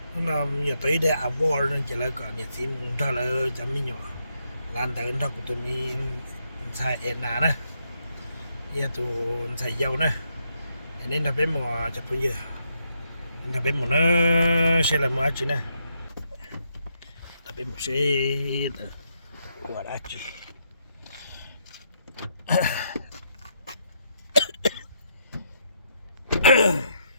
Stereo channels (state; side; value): inverted; both; correlation -0.78